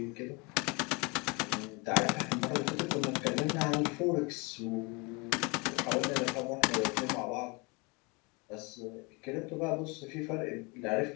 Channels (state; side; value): quieter; right; 28.5 dB